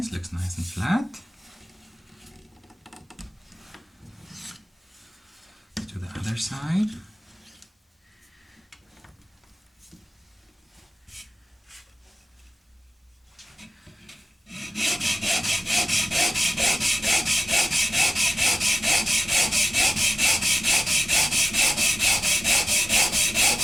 looks nice and flat. To the other side.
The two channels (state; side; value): normal; both; correlation 0.96